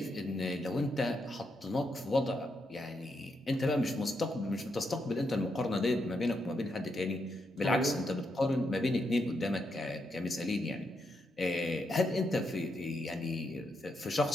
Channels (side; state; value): both; normal; correlation 0.81